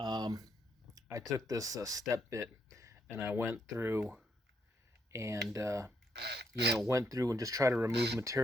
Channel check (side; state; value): both; normal; correlation 0.76